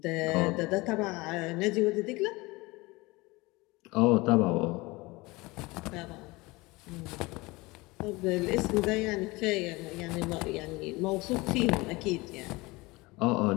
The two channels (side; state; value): right; quieter; 22.9 dB